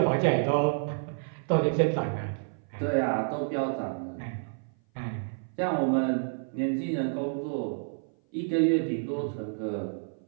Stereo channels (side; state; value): left; silent; 56 dB below the other